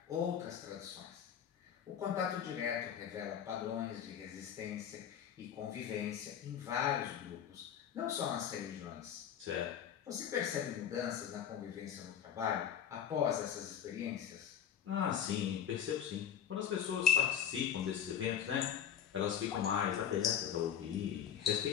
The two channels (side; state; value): right; quieter; 9.0 dB